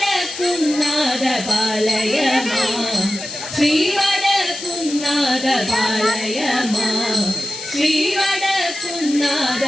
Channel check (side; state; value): left; noise; hiss, 10 dB below the sound